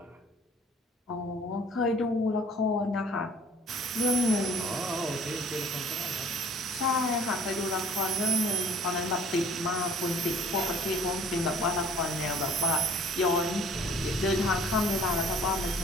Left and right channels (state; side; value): normal; both; correlation 0.53